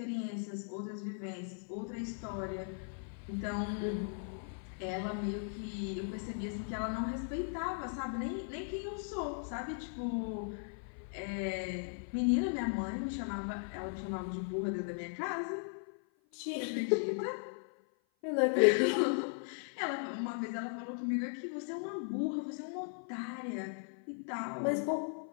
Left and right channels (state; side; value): silent; right; 53 dB below the other